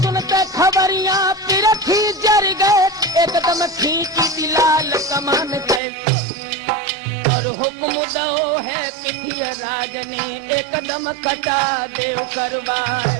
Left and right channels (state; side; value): drops out; left; at 5.8 s